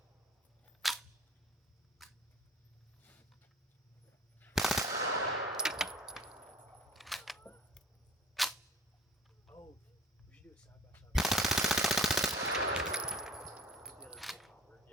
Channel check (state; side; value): normal; both; correlation 0.47